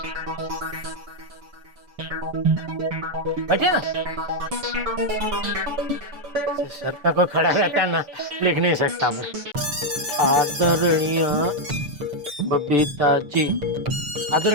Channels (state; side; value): late; left; 6.9 ms